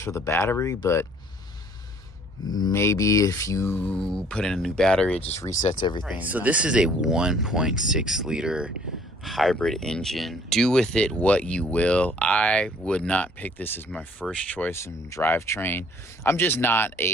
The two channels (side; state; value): both; normal; correlation 0.58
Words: the battery, but maybe if you put in a new battery, it just resets everything. Right, so this is a 1.6 liter hybrid engine. Do with it what you will. I would not pick this as my first choice in drivetrain. I'm just not